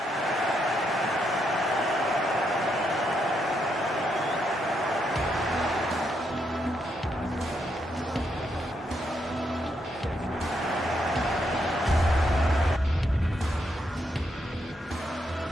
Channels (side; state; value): both; normal; correlation 0.78